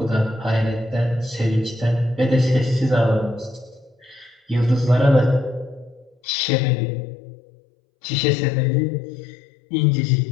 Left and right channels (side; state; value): right; drops out; at 6.2 s